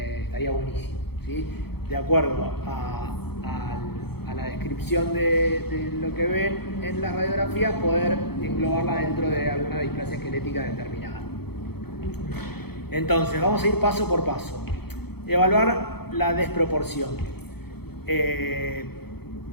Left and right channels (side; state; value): right; late; 0.96 ms